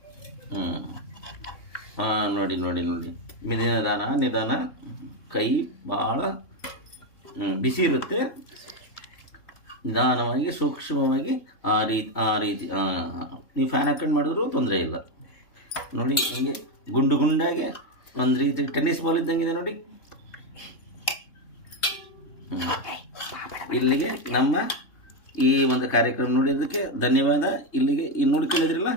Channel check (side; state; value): right; late; 3.2 ms